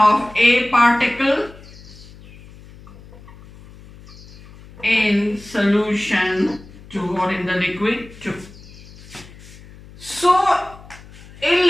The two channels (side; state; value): left; noise; hum, 20 dB below the sound